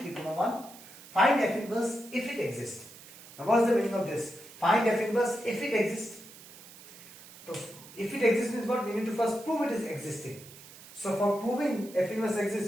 3, 1. Find f inverse if it exists. Now what is the meaning of this? Find f inverse if it exists. So if it exists means what? We need to first prove it is existing. So for proving f inverse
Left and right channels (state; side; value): noise; right; hiss, 19 dB below the sound